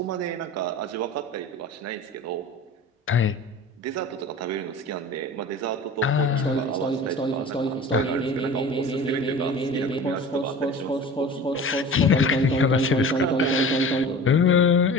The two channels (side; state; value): both; normal; correlation 0.38